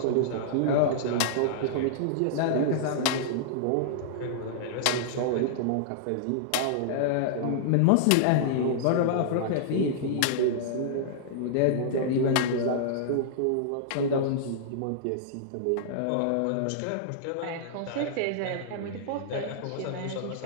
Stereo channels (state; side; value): different; both; correlation -0.02